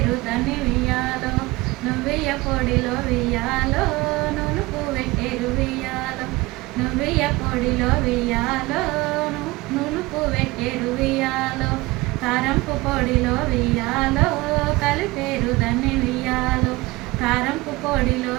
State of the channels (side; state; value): left; quieter; 21.5 dB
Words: దాన్ని వియ్యాలో, నువ్వెయ్య పొడిలో వియ్యాలో నునుపు పెట్టేరు వియ్యాలో, నువ్వెయ్య పొడిలో వియ్యాలో నునుపు పెట్టేరు వియ్యాలో, కారంపు పొడిలో వియ్యాలో కలిపేరు దాన్ని వియ్యాలో, కారంపు పొడిలో